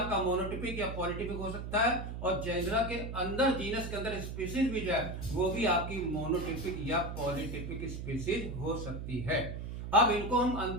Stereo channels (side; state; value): right; noise; hum, 6 dB below the sound